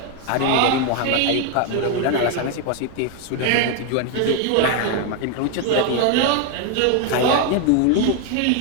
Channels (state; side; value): different; both; correlation 0.01